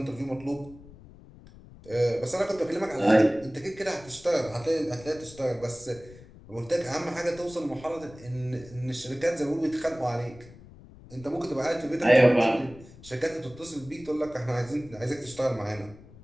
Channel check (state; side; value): noise; left; rumble, 20 dB below the sound